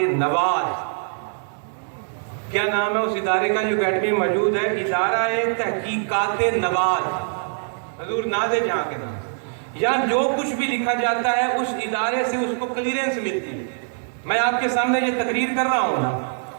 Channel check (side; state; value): left; silent; digital silence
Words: نواز. کیا نام ہے اس ادارے کا جو اکیڈمی میں موجود ہے؟ ادارہ تحقیقات نواز, حضور ناز جہاں کے نام. یہاں جو کچھ بھی لکھا جاتا ہے اس ادارے سے اس کو کلیئرنس ملتی ہے. میں آپ کے سامنے یہ تقریر کر رہا ہوں نا,